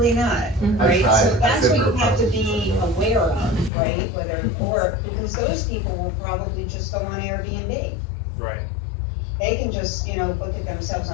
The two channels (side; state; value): right; drops out; at 3.7 s